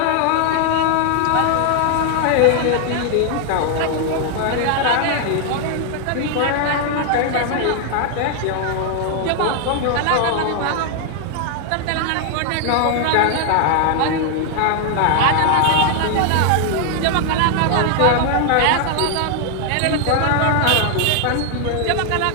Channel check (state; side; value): different; both; correlation 0.00